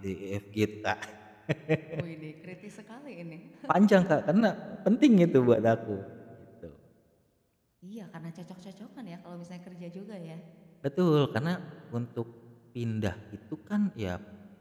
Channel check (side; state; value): both; identical; correlation 1.00